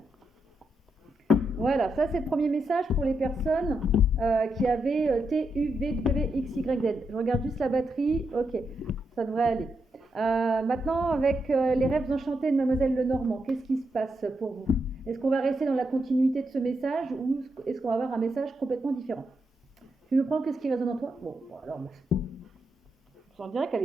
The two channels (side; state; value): both; normal; correlation 0.83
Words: Voilà, ça c'est le premier message pour les personnes qui avaient T, U, V, W, X, Y, Z. Je regarde juste la batterie, ok, ça devrait aller. Maintenant, avec les rêves enchantés de Mademoiselle Lenormand, qu'est-ce qui se passe pour vous? Est-ce qu'on va rester dans la continuité de ce message ou est-ce qu'on va avoir un message complètement différent? Tu me prends qu'est-ce qui résonne en toi? Bon, alors, j'en dirais qu'elle